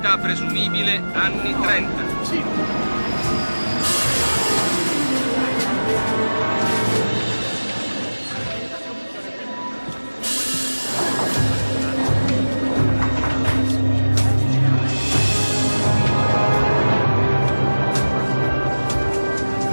presumibile anni 30.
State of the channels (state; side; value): inverted; both; correlation -1.00